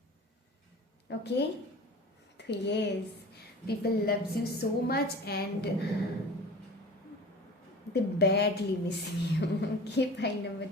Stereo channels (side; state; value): both; normal; correlation 0.39